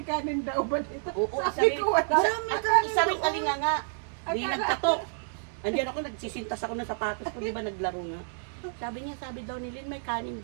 kanin daw ba dito? Oo, Sabi ko wala. Maraming kanin. Isa rin alinga nga. Di Akala- nagkatok. Andiyan ako, nagsisintas ako ng sapatos ko, di ba naglaro nga. Sabi daw ni Lynn, may kanin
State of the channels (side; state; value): left; silent; digital silence